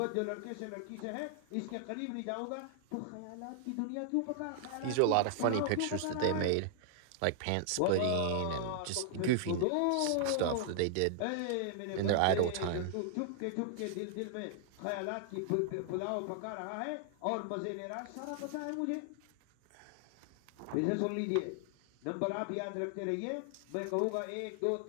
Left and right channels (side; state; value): both; different; correlation -0.01